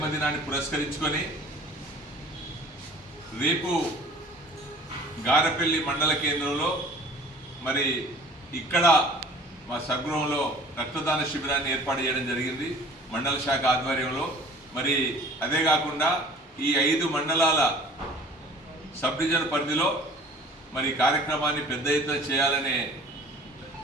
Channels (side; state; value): both; normal; correlation 0.48